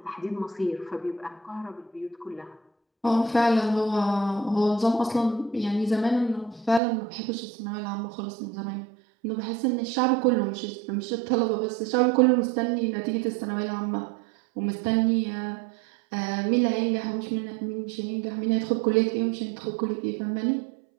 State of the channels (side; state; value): left; drops out; at 6.8 s